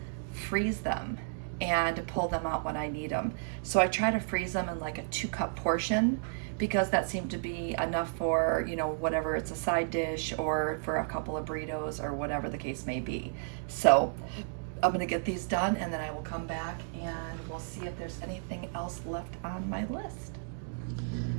freeze them and pull them out when I need them. So I try to freeze them in like a 2-cup portion because that seemed to be enough for, you know, whatever, it's a side dish or for a couple of burritos or whatever the case may be. So I'm gonna get these done and then I will come back and we'll see if there's anything else left on my list.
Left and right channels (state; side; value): silent; left; digital silence